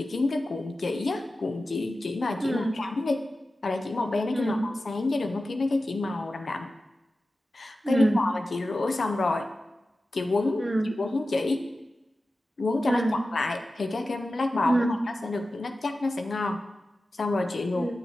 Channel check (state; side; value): normal; both; correlation 0.94